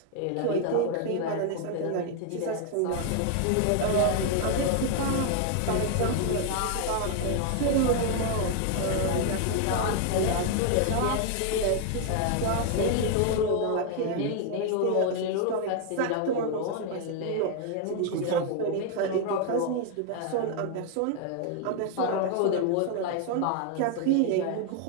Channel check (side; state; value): both; different; correlation 0.00